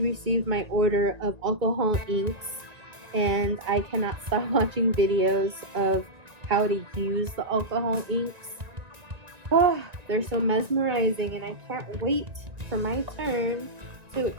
received my order of alcohol inks, and I cannot stop watching videos of how to use the alcohol inks. Oh, they're so mesmerizing, and I can't wait for my turn to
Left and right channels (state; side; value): late; left; 1.9 ms